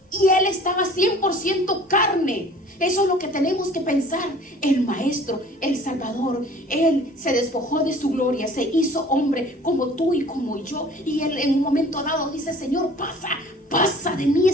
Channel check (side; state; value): both; normal; correlation 0.48